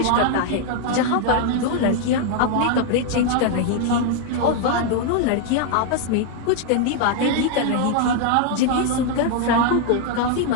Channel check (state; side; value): different; both; correlation 0.00